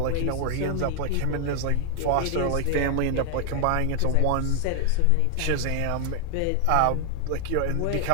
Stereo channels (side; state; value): both; different; correlation 0.01